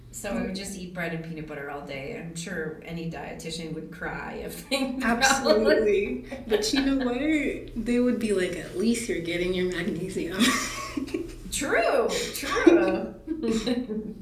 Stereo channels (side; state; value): both; identical; correlation 1.00